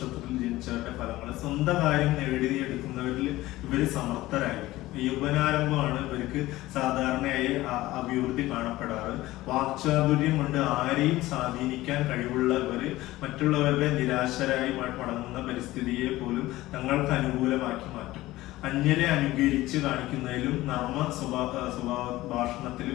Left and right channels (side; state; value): right; quieter; 17.3 dB